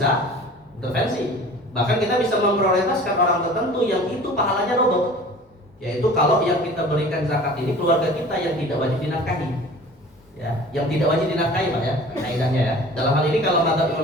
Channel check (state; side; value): normal; both; correlation 0.43